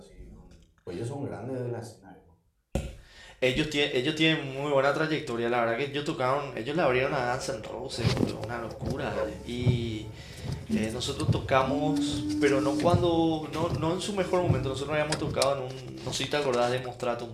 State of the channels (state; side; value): identical; both; correlation 1.00